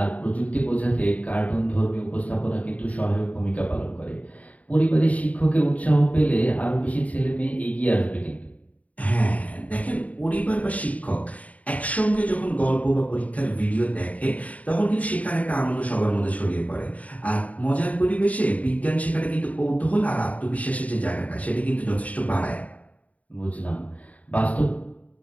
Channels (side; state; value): right; late; 0.070 ms